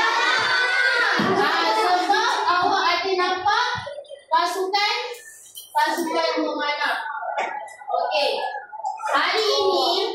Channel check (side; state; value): both; identical; correlation 1.00